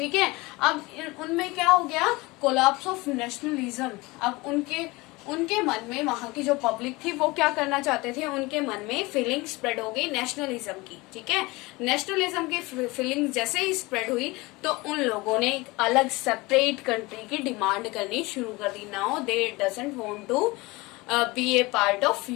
है, अब उनमें क्या हो गया, कोलैप्स ऑफ नेशनलिज्म. अब उनके मन में, वहां की जो पब्लिक थी वो क्या करना चाहते थे, उनके मन में फीलिंग स्प्रेड हो गई नेशनलिज्म की. ठीक है, नेशनलिज्म की फीलिंग जैसे ही स्प्रेड हुई तो उन लोगों ने एक अलग सेपरेट कंट्री की डिमांड करनी शुरू कर दी. Now they doesn't want to be a part of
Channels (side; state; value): right; quieter; 23.0 dB